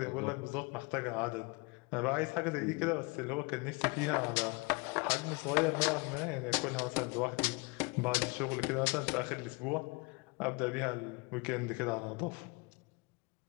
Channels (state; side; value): quieter; right; 28.0 dB